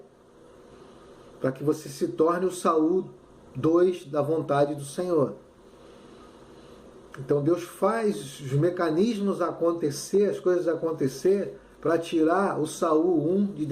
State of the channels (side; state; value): both; identical; correlation 1.00